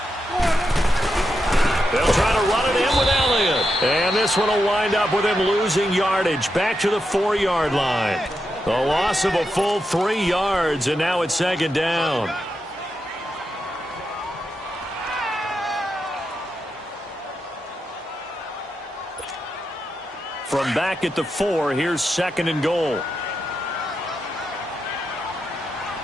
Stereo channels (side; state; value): both; normal; correlation 0.86